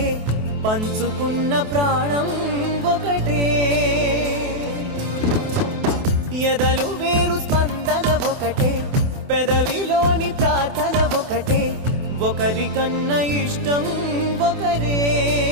పంచుకున్న ప్రాణం ఒకటే ఎదలు వేరు స్పందన ఒకటే పెదవిలోని ప్రార్థన ఒకటే ఒకరికన్నా ఇష్టం ఒకరే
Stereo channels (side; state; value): left; late; 28 ms